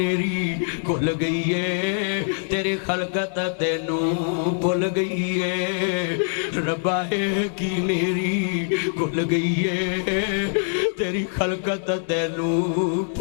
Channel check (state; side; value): silent; right; digital silence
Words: کھل گئی ہے تیری خلقت تینو بھول گئی ہے ربا ہے کی نیری کھل گئی ہے تیری خلقت تینو